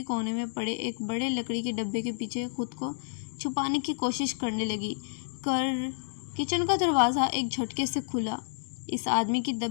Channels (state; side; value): silent; right; digital silence